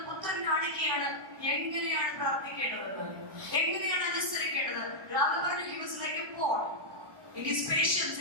പുത്രൻ കാണിക്കുകയാണ് എങ്ങനെയാണ് പ്രാർത്ഥിക്കേണ്ടതെന്ന്, എങ്ങനെയാണ് അനുസരിക്കേണ്ടത്. രാവിലെ പറഞ്ഞു, he was like a Paul in his patience,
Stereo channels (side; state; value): left; late; 1.1 ms